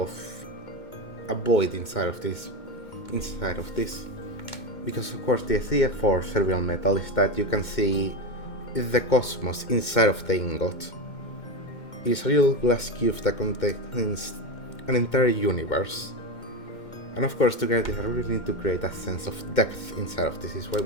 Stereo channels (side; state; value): right; late; 2.2 ms